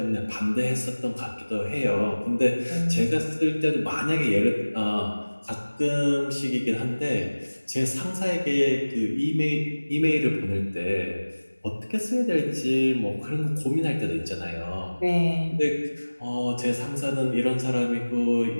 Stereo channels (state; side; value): inverted; both; correlation -1.00